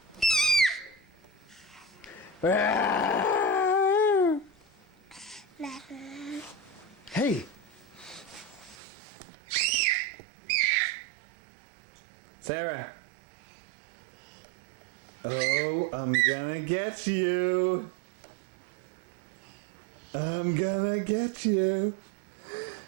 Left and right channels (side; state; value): left; drops out; at 8.8 s